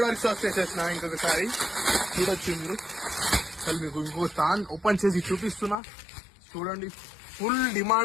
రీస్టాక్ చేసేసిన ఇంకొకసారి. చూడొచ్చు మీరు. అసలు మీకు ఇంకో స్థాన్ ఓపెన్ చేసి చూపిస్తున్నా చూడండి. ఫుల్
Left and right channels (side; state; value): right; drops out; at 5.8 s